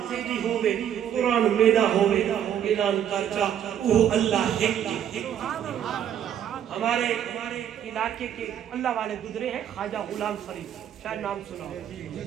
تیری ہوئے قرآن میرا ہوئے اعلان کرچا وہ اللہ ہے ہمارے علاقے کے اللہ والے گزرے ہیں خواجہ غلام فرید شاید نام سنا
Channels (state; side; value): quieter; left; 9.7 dB